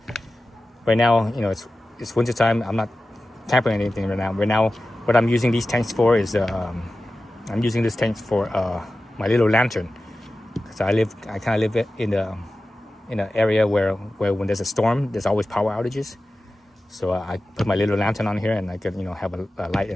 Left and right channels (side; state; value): both; normal; correlation 0.94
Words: Right now, it's winter time. I'm not tampering anything right now. Right now, what I'm using these tanks for is I'm using this tank for my little lantern. So I kind of live in the in an area where when there's a storm, there's always power outages. So I put my little lantern on here, and I could have a light